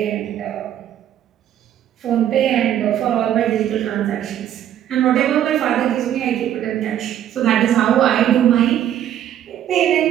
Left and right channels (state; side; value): quieter; left; 10.9 dB